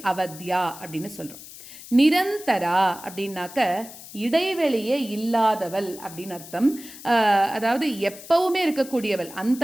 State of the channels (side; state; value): left; noise; hiss, 16 dB below the sound